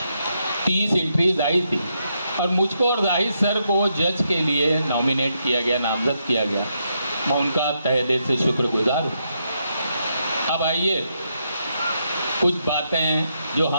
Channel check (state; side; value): inverted; both; correlation -0.80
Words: 30 एंट्रीज़ आई थी और मुझको और जाहिद सर को जज के लिए नॉमिनेट किया गया, नामज़द किया गया। मैं उनका तहे दिल से शुक्रगुज़ार हूँ। अब आइए कुछ बातें जो